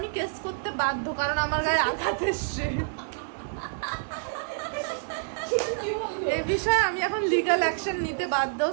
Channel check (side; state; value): left; silent; digital silence